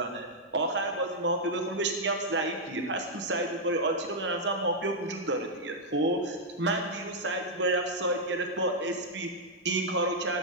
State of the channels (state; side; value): normal; both; correlation -0.05